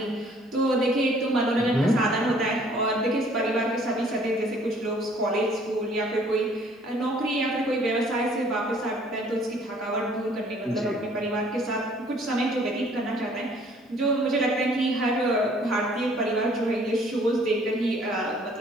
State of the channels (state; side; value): normal; both; correlation 0.58